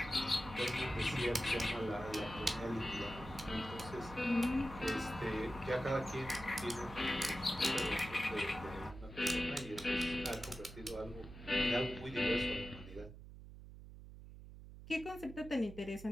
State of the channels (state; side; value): noise; right; hum, 14 dB below the sound